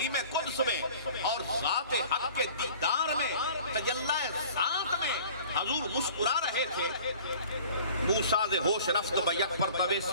قدس میں اور ذات حق کے دیدار میں تجلی ذات میں حضور مسکرا رہے تھے۔ موسیٰ ز ہوش رفت بیک پر طوے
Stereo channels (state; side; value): inverted; both; correlation -0.47